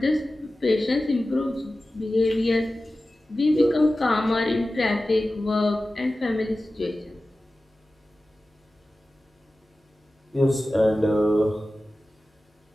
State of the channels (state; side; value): normal; both; correlation 0.95